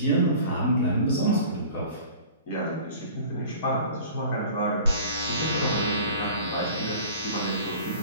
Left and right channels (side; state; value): both; inverted; correlation -0.44